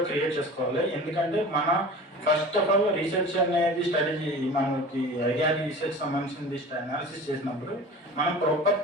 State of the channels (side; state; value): both; normal; correlation 0.37